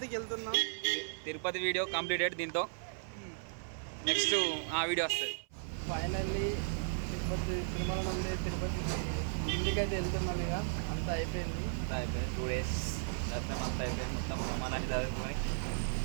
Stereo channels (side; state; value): left; silent; 54 dB below the other